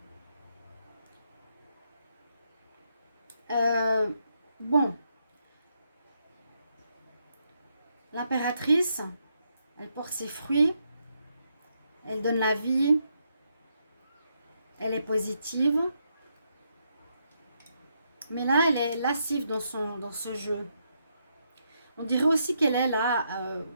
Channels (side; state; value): both; inverted; correlation -0.79